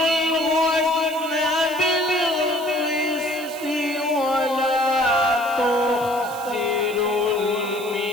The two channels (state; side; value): noise; right; hiss, 16 dB below the sound